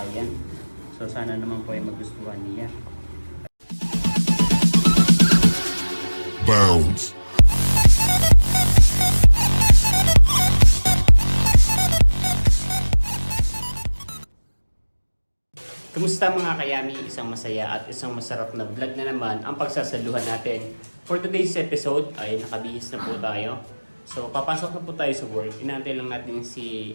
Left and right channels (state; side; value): inverted; both; correlation -1.00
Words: So sana naman po ay magustuhan niya. Bounds. Kumusta mga kayami? Isang masaya at isang masarap na vlog na naman ang pagsasaluhan natin. For today's episode ay nakabihis na po tayo. So papasok na po tayo sa work. Inaantay lang natin si